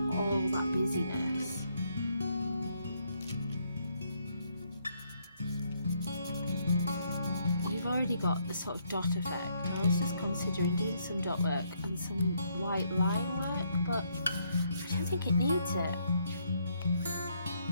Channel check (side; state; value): both; inverted; correlation -0.73